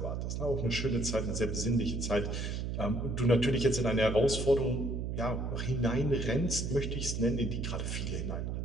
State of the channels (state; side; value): noise; right; hum, 2 dB below the sound